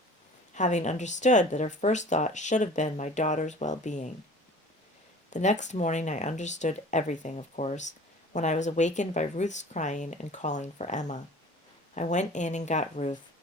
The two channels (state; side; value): normal; both; correlation 0.44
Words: having understood that her first thought should have been my daughter's well-being. The next morning I understood everything, of course, when I was awakened by Ruth's crying and calling for Emma. I went in and got Ruth.